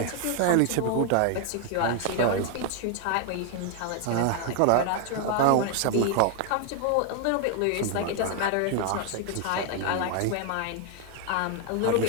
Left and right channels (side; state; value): both; different; correlation 0.00